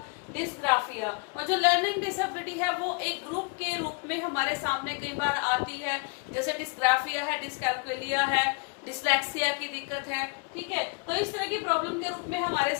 dysgraphia. और जो लर्निंग डिसेबिलिटी है वो एक ग्रुप के रूप में हमारे सामने कई बार आती है, जैसे डिस्ग्राफिया है, डिस्कैल्कुलिया है, डिस्लेक्सिया की दिक्कत है। ठीक है, तो इस तरह की प्रॉब्लम के रूप में हमारे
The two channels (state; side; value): quieter; right; 32.0 dB